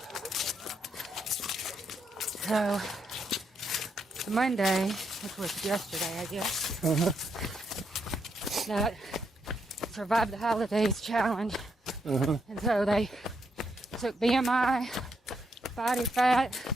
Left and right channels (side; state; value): both; normal; correlation 0.79